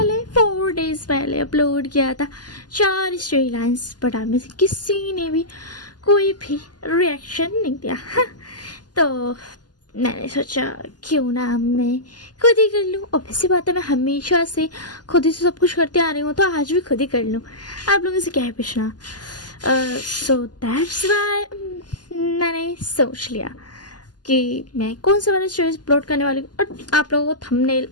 4 days पहले अपलोड किया था 4 स्टोरी लाइन्स, बट आप में से किसी ने भी कोई भी रिएक्शन नहीं दिया। तो मैंने सोचा क्यों ना मैं खुद ही कर लूँ। ऑब्वियसली बात है, मैं हमेशा से खुद ही से सब कुछ करते आ रही हूँ, तो आज भी खुद ही कर लूँ। आप लोगों से क्या है पूछना। सो दैट्स वाई मैंने सोच लिया कि मैं कौन सा वाला स्टोरीज अपलोड करने वाली हूँ, और आप लोगों को थंबनेल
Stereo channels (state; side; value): late; right; 0.70 ms